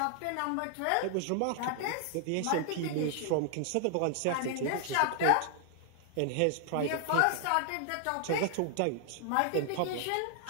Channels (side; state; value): both; different; correlation 0.00